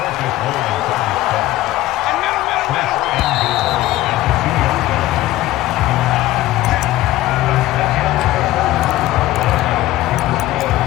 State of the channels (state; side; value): quieter; right; 16.1 dB